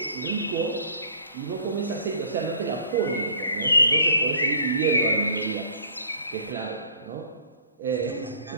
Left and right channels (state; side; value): inverted; both; correlation -0.54